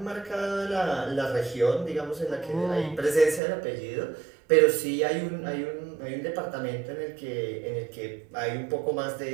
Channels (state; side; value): drops out; left; at 3.4 s